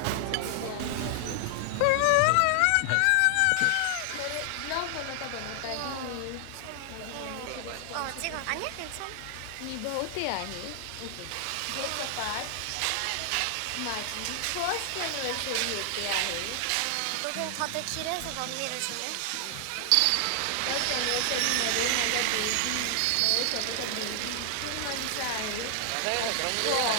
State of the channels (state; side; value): different; both; correlation 0.00